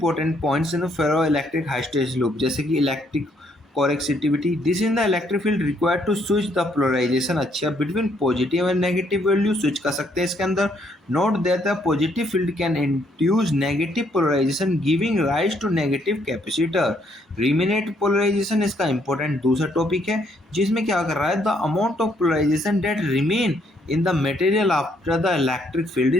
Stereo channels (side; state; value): both; normal; correlation 0.70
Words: points in ferroelectric hysteresis loop, जैसे कि electric coercivity, this in the electric field required to switch the polarization. अच्छा, between positive and negative value switch कर सकते हैं इसके अंदर। Note that the positive field can induce negative polarization giving rise to negative capacitor. Remanent polarization इसका important दूसरा topic है, जिसमें क्या कर रहा है, the amount of polarization that remain in the material after the electric field